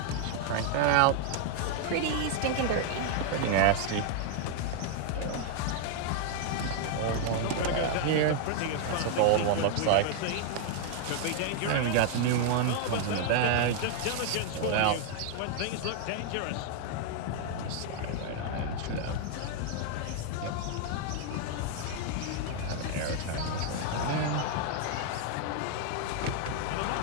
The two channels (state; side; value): different; both; correlation 0.00